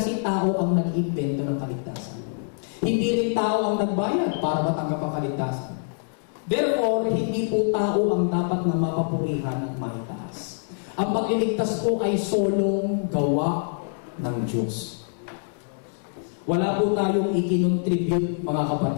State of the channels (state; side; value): silent; right; 62 dB below the other